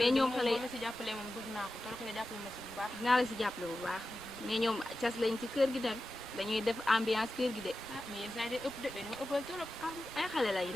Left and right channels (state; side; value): normal; both; correlation 0.93